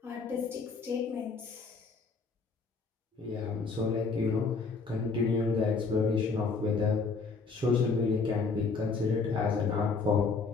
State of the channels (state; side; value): quieter; right; 4.5 dB